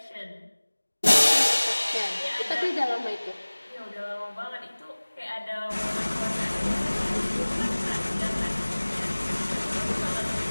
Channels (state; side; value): inverted; both; correlation -1.00